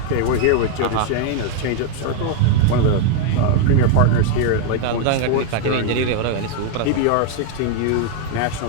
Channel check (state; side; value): different; both; correlation 0.01